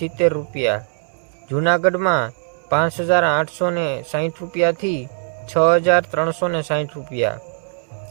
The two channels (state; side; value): silent; left; 65 dB below the other